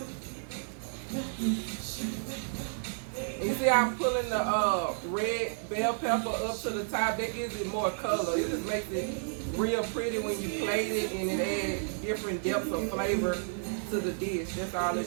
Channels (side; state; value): left; silent; 57 dB below the other